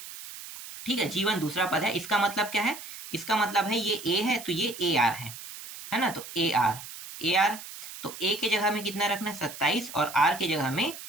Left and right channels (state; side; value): noise; right; hiss, 12 dB below the sound